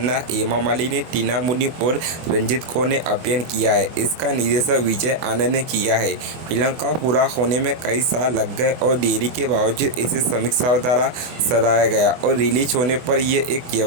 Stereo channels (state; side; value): late; left; 24 ms